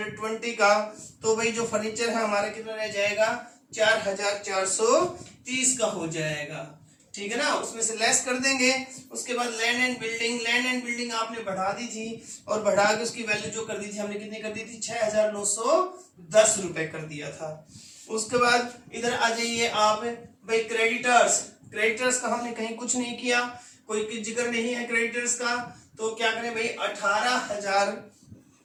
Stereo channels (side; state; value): both; identical; correlation 1.00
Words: का, तो भाई जो फर्नीचर है हमारा कितना रह जाएगा, 4,430 का हो जाएगा। ठीक है ना, उसमें से लेस कर देंगे। उसके बाद land and building, land and building आपने बढ़ा दी थी, और बढ़ा के उसकी वैल्यू जो कर दी थी हमने, कितनी कर दी थी, 6,910 रुपए कर दिया था। उसके बाद इधर आ जाइए आप भाई क्रेडिटर्स। क्रेडिटर्स का हमने कहीं कुछ नहीं किया, कोई जिक्र नहीं है क्रेडिटर्स का, तो क्या करें भाई